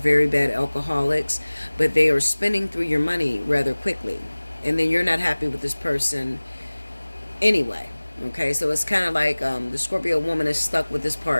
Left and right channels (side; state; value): both; inverted; correlation -1.00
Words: bad alcoholics, but they are spending through your money rather quickly, and then you're not happy with this person anyway. Okay, so it's kind of like the Scorpio woman is stuck with this